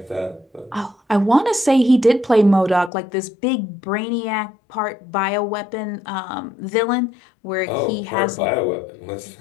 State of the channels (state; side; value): drops out; right; at 2.9 s